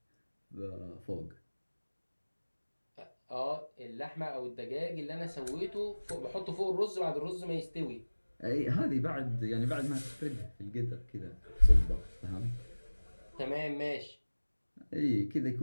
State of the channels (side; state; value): both; inverted; correlation -1.00